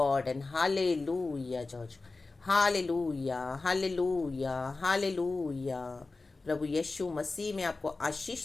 and hallelujah, church. Hallelujah, hallelujah, hallelujah. प्रभु यीशु मसीह में आपको आशीष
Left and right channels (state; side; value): quieter; right; 3.6 dB